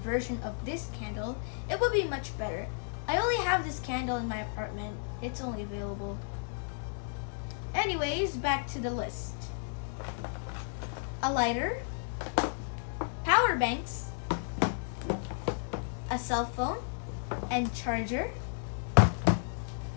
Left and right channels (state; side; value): silent; right; digital silence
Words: of this candle, it will be much better. I only have this candle in my apartment. It's only available. Anyways, back to the list. A lighter, power banks, a cell phone and charger,